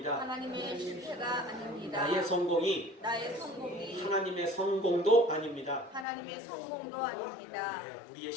하나님의 실패가 아닙니다. 나의 성공이 하나님의 성공도 아닙니다. 하나님의 성공도 아닙니다. 우리의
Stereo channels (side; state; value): right; drops out; at 6.1 s